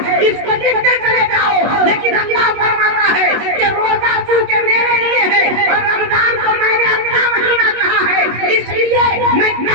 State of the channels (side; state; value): left; late; 24 ms